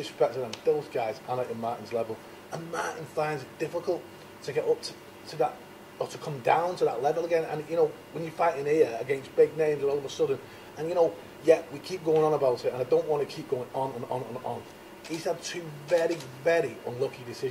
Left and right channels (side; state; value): both; identical; correlation 1.00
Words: to them. Those guys aren't at Martin's level, and Martin finds it difficult to get up to that or to come down to that level again. And you know, when you're fighting here against big names, all of a sudden, and you know, yeah, we keep going on about it, and I don't want to keep going on and on and on. He's had two very, very unlucky